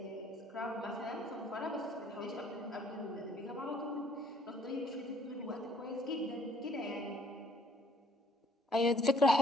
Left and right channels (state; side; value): normal; both; correlation 0.63